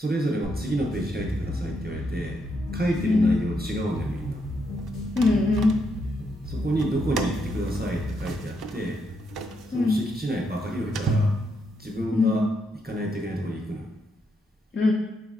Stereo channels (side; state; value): both; normal; correlation 0.79